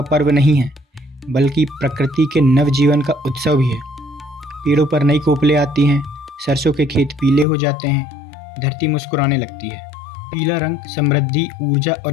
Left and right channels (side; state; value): right; drops out; at 7.5 s